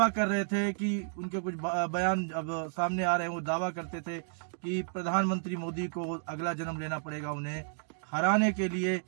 कर रहे थे कि उनके कुछ बयान अब सामने आ रहे हैं। वो दावा करते थे कि प्रधानमंत्री मोदी को अगला जन्म लेना पड़ेगा उन्हें हराने के लिए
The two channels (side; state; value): left; silent; digital silence